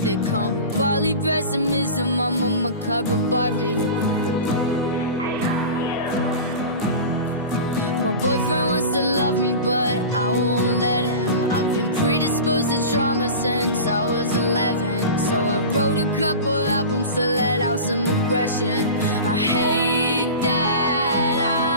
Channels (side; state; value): both; inverted; correlation -0.32